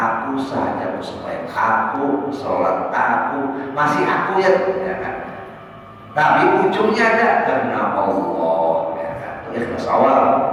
saja sembahyang, aku sholat, aku masih aku ya kan? Tapi ujungnya ada karena Allah, ya kan? Itu ikhlas awal.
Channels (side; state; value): both; identical; correlation 1.00